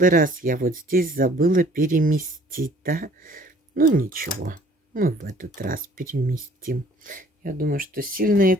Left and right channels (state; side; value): normal; both; correlation 0.55